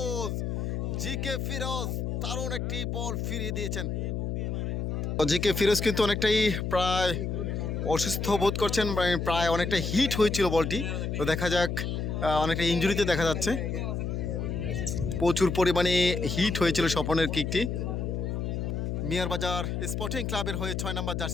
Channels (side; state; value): left; noise; hum, 2 dB below the sound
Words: ফিরোজ দারুণ একটি বল ফিরিয়ে দিয়েছেন। জিকে ফিরোজ কিন্তু অনেকটাই প্রায় অসুস্থ বোধ করছেন, প্রায় অনেকটা হিট হয়েছিল বলটি। তো দেখা যাক, অনেকটা ইনজুরিতে দেখা যাচ্ছে, প্রচুর পরিমাণে হিট হয়েছিল স্বপনের কিকটি। মিয়ারবাজার স্পোর্টিং ক্লাবের হয়ে 6 নম্বর